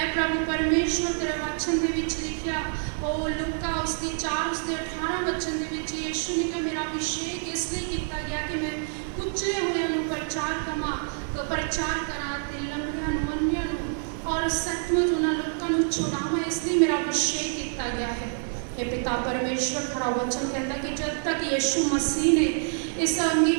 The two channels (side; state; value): left; silent; digital silence